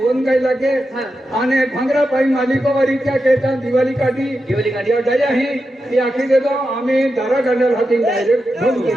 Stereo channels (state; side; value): normal; both; correlation 0.89